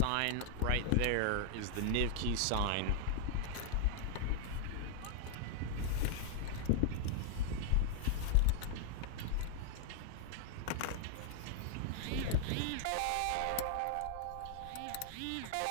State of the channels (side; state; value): both; different; correlation 0.00